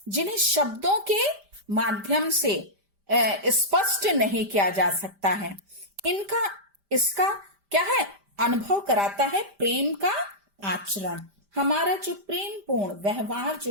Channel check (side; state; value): left; late; 5.0 ms